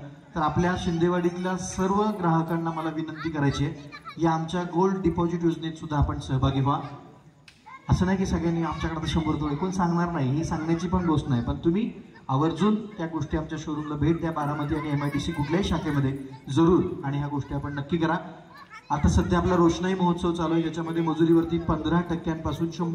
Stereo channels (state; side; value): identical; both; correlation 1.00